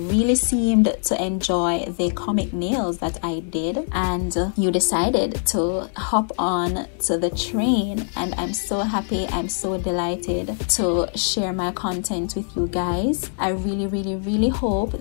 seemed to enjoy the comic nails that I did, and you decided to hop on to the train, and I'm so happy, I'm so delighted to share my content with you guys. I really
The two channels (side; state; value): right; silent; digital silence